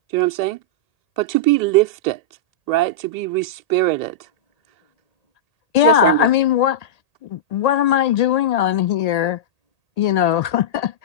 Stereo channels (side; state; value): right; late; 1.8 ms